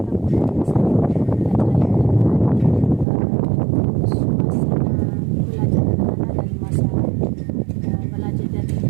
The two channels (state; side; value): drops out; left; at 3.1 s